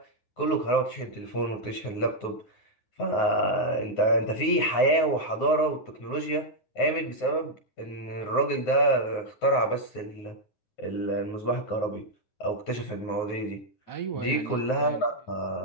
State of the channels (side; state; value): right; late; 9.4 ms